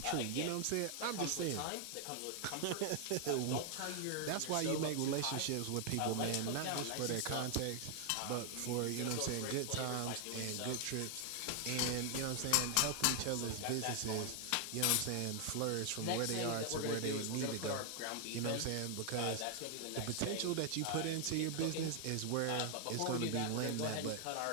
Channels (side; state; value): both; different; correlation 0.00